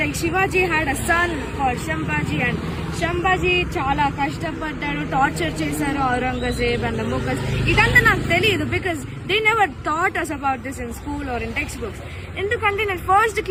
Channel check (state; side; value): identical; both; correlation 1.00